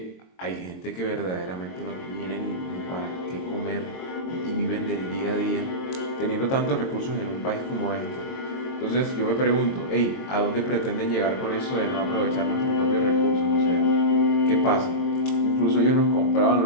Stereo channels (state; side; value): late; right; 22 ms